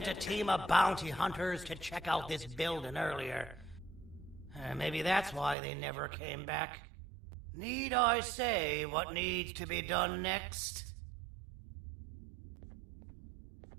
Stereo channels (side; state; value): left; drops out; at 5.6 s